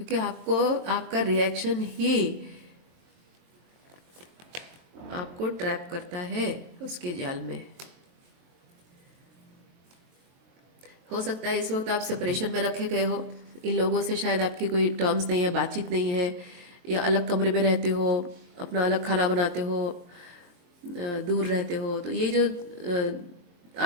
आपको आपका रिएक्शन ही आपको ट्रैप करता है उसके जाल में। हो सकता है इस वक्त आप सेपरेशन में रखे गए हो, इन लोगों से शायद आपकी कोई टर्म्स नहीं है, बातचीत नहीं है, या अलग कमरे में रहते हो, अपना अलग खाना बनाते हो, दूर रहते हो। तो ये जो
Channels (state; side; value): late; left; 23 ms